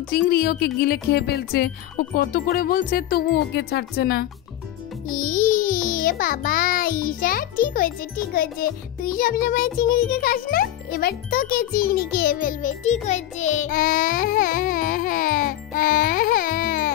চিংড়ি ওকে গিলে খেয়ে ফেলছে। ও কত করে বলছে তবু ওকে ছাড়ছে না। বাবা ঈশা, ঠিক হয়েছে ঠিক হয়েছে, তুই সবসময় চিংড়িকে খাস না, এবার তোকে চিংড়ি খেয়ে ফেলবে। ঠিক হয়েছে।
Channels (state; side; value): quieter; right; 13.0 dB